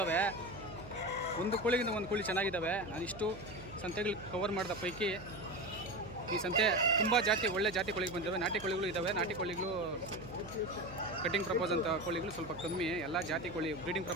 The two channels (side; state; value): right; noise; hum, 15 dB below the sound